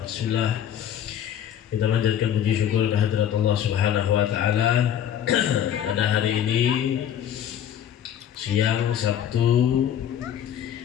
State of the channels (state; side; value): quieter; right; 9.9 dB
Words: Bismillah. Kita manjatkan puji syukur kehadirat Allah Subhanahu wa taala. Pada hari ini siang Sabtu,